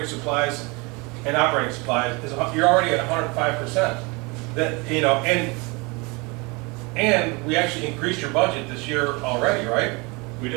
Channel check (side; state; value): left; quieter; 27.6 dB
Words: supplies, you're already at 105%. That, you know, and we actually increased your budget this year already, right? We